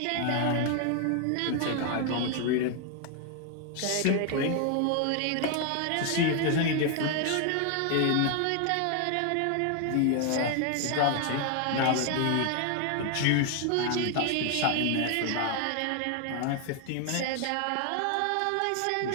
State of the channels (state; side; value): different; both; correlation 0.00